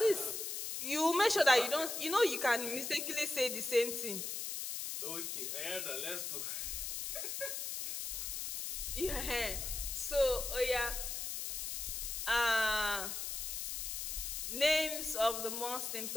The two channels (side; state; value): left; noise; hiss, 4 dB below the sound